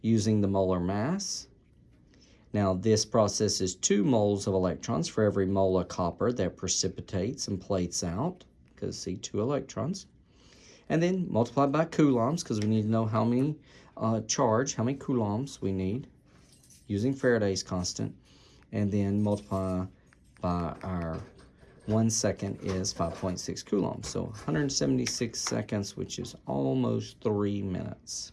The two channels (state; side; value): identical; both; correlation 1.00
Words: using the molar mass. Now this process is 2 moles of electrons for every mole of copper that precipitates and plates out, because see, 2 electrons. And then multiply by coulombs, because we need to know how many how many coulombs we need using Faraday's constant. And then multiply by our 1 second is 5.6 coulombs. So 176 seconds, which is almost 3